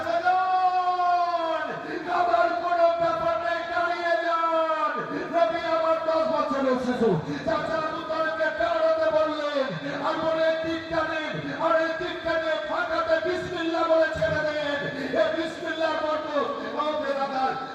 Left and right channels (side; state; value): both; identical; correlation 1.00